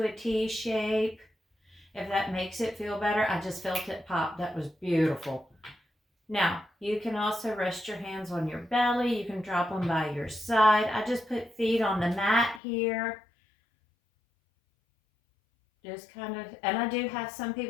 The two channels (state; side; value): drops out; right; at 12.6 s